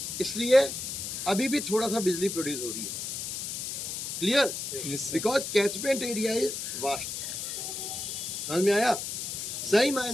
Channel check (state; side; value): noise; left; hiss, 5 dB below the sound